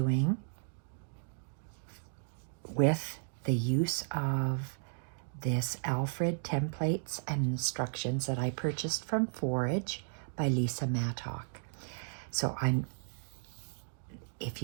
with the use of this Alfred templates and instructions that I purchased from Forage by Lisa Mattock. So if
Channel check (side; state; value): left; silent; digital silence